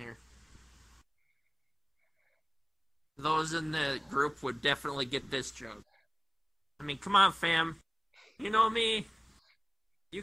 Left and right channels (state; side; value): identical; both; correlation 1.00